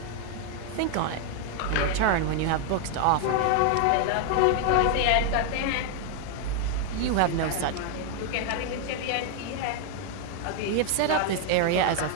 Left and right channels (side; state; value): both; different; correlation 0.00